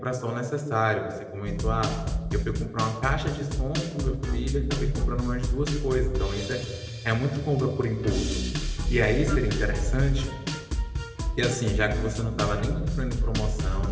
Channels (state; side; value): identical; both; correlation 1.00